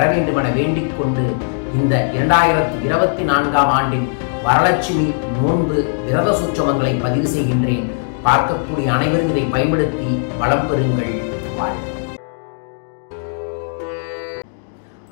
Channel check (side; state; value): right; silent; digital silence